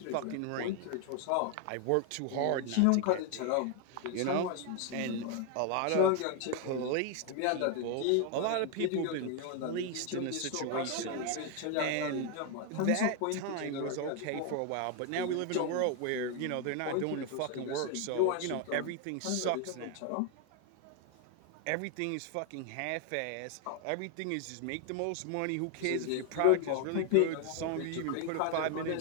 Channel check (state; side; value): different; both; correlation 0.01